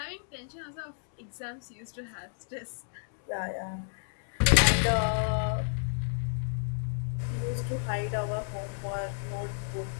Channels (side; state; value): right; silent; 57 dB below the other